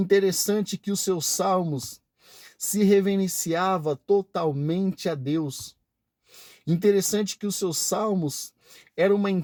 é que os seus salmos se reverenciava totalmente a Deus. Interessante que os seus salmos eram uma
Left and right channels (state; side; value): identical; both; correlation 1.00